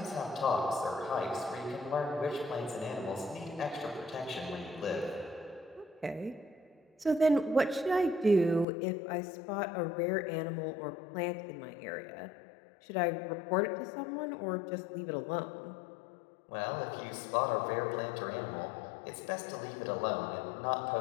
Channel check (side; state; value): right; drops out; at 8.7 s